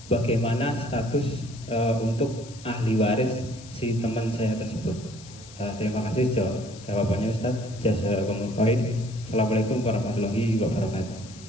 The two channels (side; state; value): left; noise; hiss, 19 dB below the sound